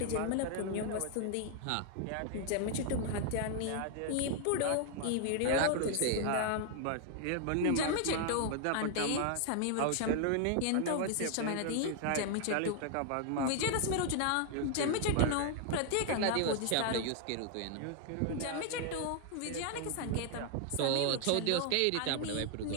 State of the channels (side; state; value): both; different; correlation 0.00